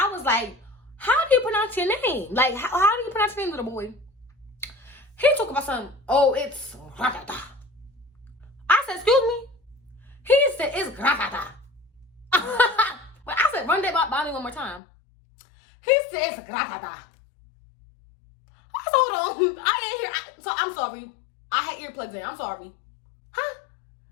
was like, how do you pronounce your name? Like, how do you pronounce your name, little boy? He talk about something. Oh, it's gratata. I said, excuse me? He said, it's gratata. But I said, run that by me one more time. He said, it's gratata. I said, hold on. I ain't hear. So I'm sorry. I had earplugs in. I'm sorry. Huh?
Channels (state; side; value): drops out; right; at 14.8 s